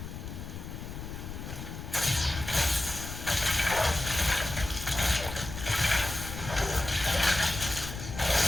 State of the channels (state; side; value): noise; left; rumble, 9 dB below the sound